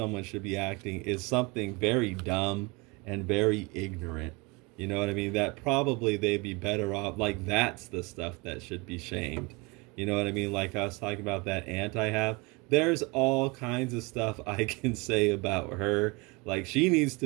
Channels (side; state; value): left; quieter; 26.4 dB